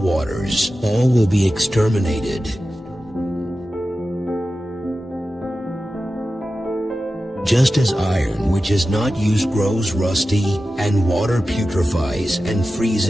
All will be exterminated. Just as iron which is not used grows rusty, and water putrefies and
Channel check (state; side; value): normal; both; correlation 0.93